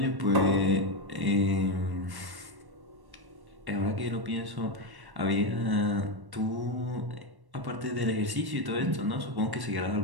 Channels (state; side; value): late; left; 1.1 ms